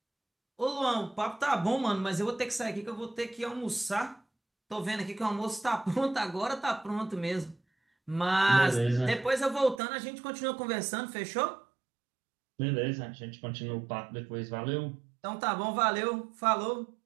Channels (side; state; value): left; drops out; at 9.8 s